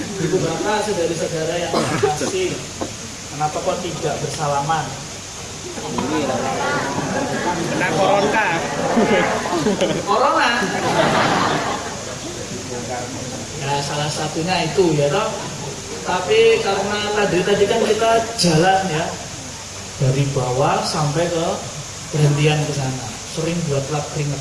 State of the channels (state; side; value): identical; both; correlation 1.00